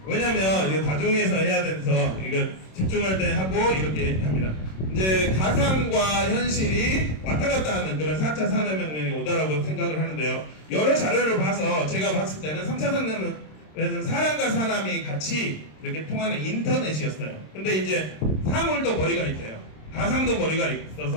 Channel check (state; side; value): late; right; 26 ms